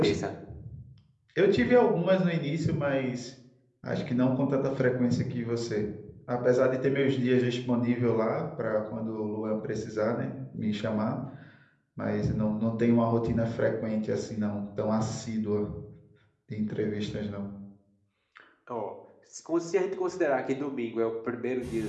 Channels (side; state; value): both; identical; correlation 1.00